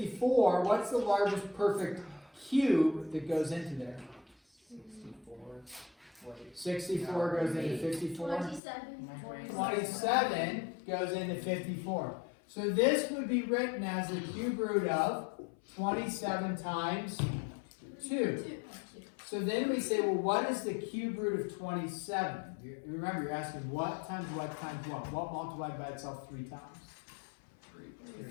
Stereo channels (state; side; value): drops out; right; at 8.6 s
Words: what's the largest perfect cube that goes into there? 64 goes into 54. 27 goes into 54. So this would be written as the cube root of 27 times 2. So then we say, well, what is the cube root of 27? Remember, you're asking what times what times what? What multiplied by itself 3 times?